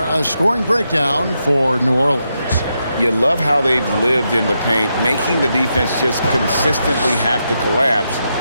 A scoring breakdown for New Orleans. You love how they've lived in the paint, making the defense just consistently have to collapse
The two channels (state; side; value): inverted; both; correlation -0.84